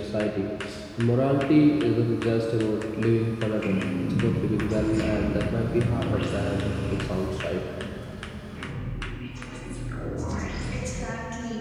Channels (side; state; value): both; identical; correlation 1.00